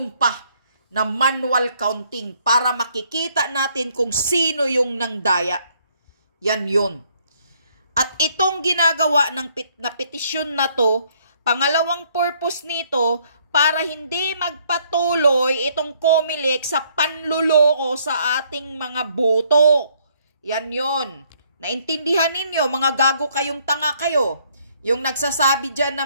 pa na manual counting para makikita natin kung sino yung nangdaya. Yan yun. At itong ginagawa na petisyon na to, pangalawang purpose nito, para hindi magpatuloy itong COMELEC sa panluloko sa ating mga boto. Yan yon. Naintindihan ninyo, mga gago kayong tanga kayo. Yung nagsasabi dyan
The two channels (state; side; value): inverted; both; correlation -0.67